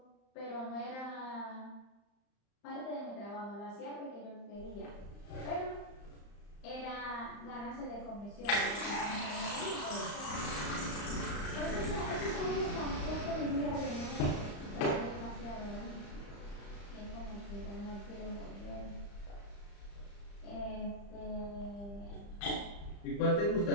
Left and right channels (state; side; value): late; right; 35 ms